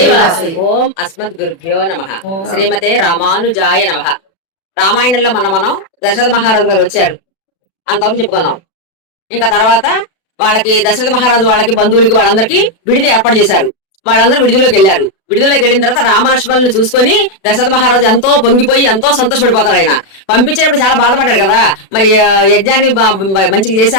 వాసవి. ఓం అస్మద్ గురుభ్యో నమః. శ్రీమతే రామానుజాయ నమః. రామాయణంలో మనం దశరథ మహారాజు గారు వచ్చారు అంతవరకు చెప్పుకున్నాం. ఇంకా తర్వాత వాళ్ళకి దశరథ మహారాజు వాళ్ళకి బంధువులకి వాళ్ళందరికీ విడిది ఏర్పాటు చేశారు. వాళ్ళందరూ విడిదిలోకి వెళ్ళారు. విడుదలకి వెళ్ళిన తర్వాత రామలక్ష్మణులను చూసుకొని దశరథ మహారాజు ఎంతో పొంగిపోయి ఎంతో సంతోషపడిపోతాడు. ఆయన పంపించేటప్పుడు చాలా బాధపడ్డాడు కదా, మరి యజ్ఞాన్ని మంచిగా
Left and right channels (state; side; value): late; right; 36 ms